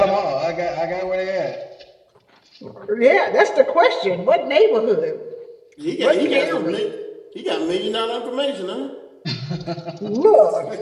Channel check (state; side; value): identical; both; correlation 1.00